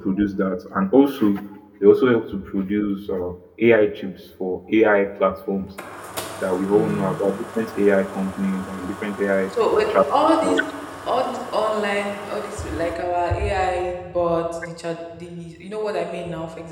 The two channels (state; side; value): identical; both; correlation 1.00